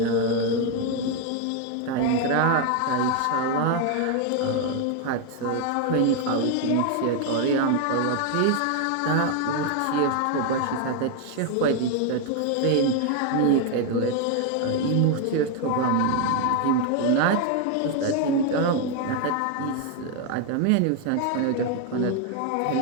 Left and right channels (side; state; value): both; different; correlation 0.01